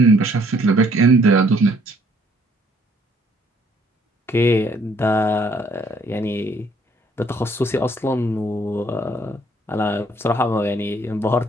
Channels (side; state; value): both; normal; correlation 0.64